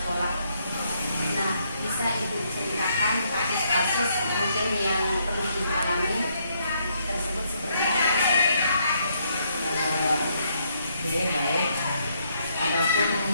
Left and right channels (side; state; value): both; inverted; correlation -0.73